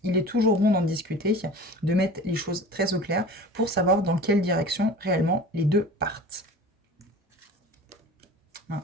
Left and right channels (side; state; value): both; normal; correlation 0.39